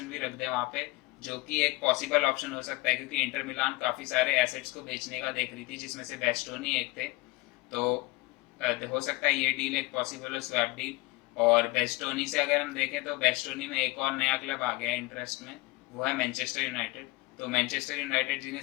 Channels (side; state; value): right; quieter; 22.4 dB